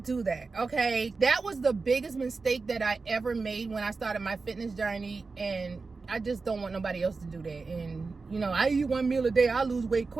do that, okay? That was the biggest mistake that I ever made when I started my fitness journey, and I just don't want nobody else to do that. And you know, I eat 1 meal a day, I lose weight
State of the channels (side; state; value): left; quieter; 4.2 dB